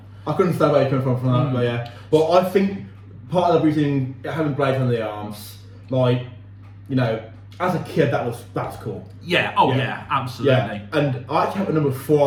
I couldn't understand where you come from that, but yeah. But I think part of the reason having blades on the arms, like, you know, as a kid, that was cool. Yeah, absolutely. Yeah. And I actually have a number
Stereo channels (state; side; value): identical; both; correlation 1.00